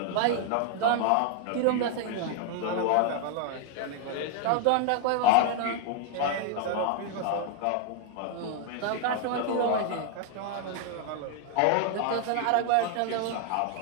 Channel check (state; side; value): different; both; correlation 0.00